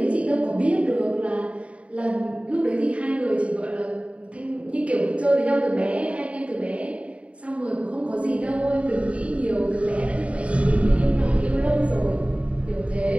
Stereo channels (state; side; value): late; left; 0.064 ms